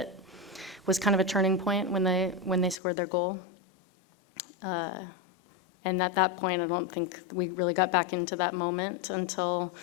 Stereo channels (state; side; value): drops out; right; at 2.8 s